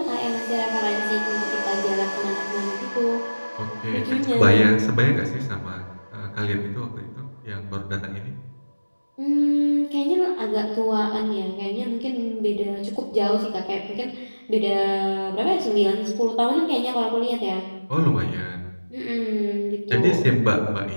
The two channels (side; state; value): both; inverted; correlation -1.00